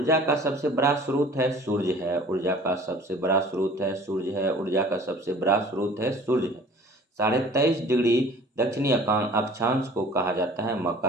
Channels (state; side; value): normal; both; correlation 0.48